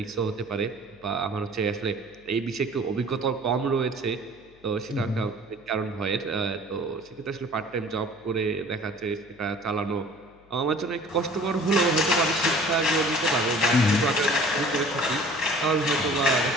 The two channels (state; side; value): noise; left; hum, 28 dB below the sound